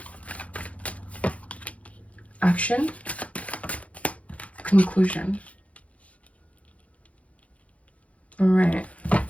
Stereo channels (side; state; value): right; late; 0.065 ms